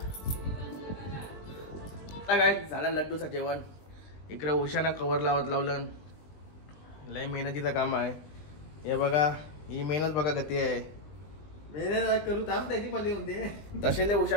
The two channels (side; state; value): right; late; 20 ms